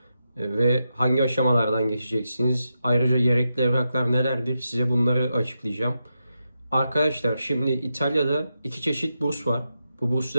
ve hangi aşamalardan geçeceksiniz. Ayrıca gerekli evraklar nelerdir size bunları açıklayacağım. Arkadaşlar şimdi İtalya'da iki çeşit burs var. Bu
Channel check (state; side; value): inverted; both; correlation -0.87